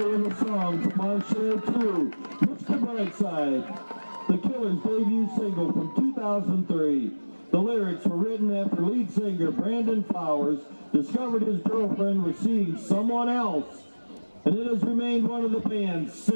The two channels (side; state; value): both; inverted; correlation -1.00